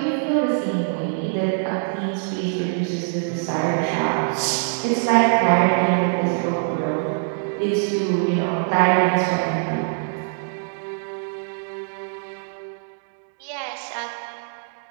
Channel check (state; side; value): silent; left; digital silence